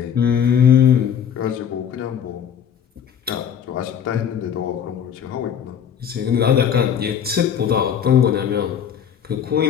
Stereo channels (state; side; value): quieter; right; 8.3 dB